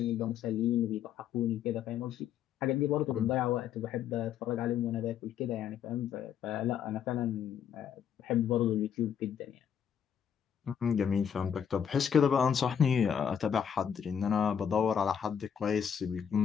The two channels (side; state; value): right; quieter; 8.3 dB